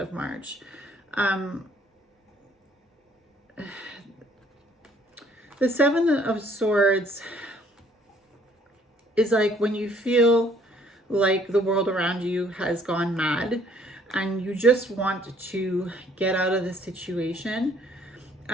March. The Seven of Swords is like when you feel like the world around you has gone mad and you just want to get out of the situation.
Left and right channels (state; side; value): normal; both; correlation 0.62